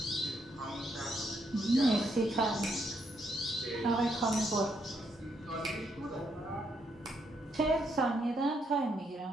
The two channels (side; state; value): both; normal; correlation 0.75